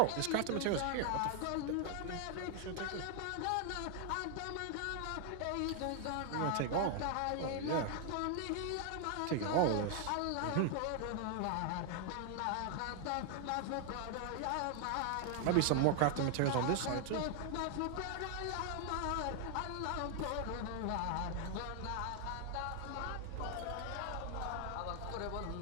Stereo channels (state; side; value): different; both; correlation 0.00